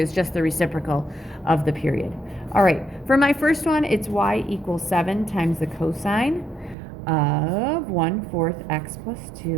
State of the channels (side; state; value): left; drops out; at 6.8 s